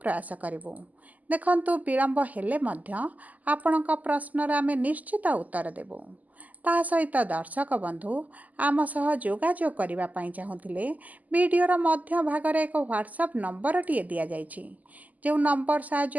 प्रयास करिवु। देखंतु विलंब हेले मध्य आपणक प्रश्नर आमे निश्चित उत्तर देबु। ता सहित दर्शक बंधु आम सह जोगाजोग करबा पई चाहुथिले वीडियोर मध्य भागरे एक व्हाट्सएप नंबर टिए दिया जाइछि जो नंबर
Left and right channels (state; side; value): late; left; 0.079 ms